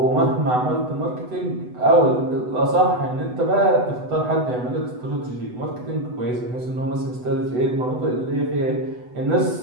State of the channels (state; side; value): late; left; 8.0 ms